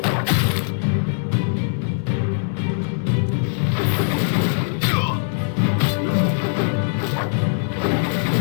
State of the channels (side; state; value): right; silent; digital silence